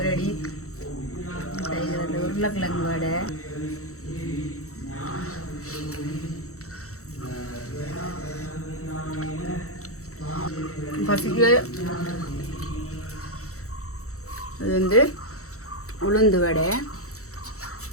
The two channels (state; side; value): late; right; 0.64 ms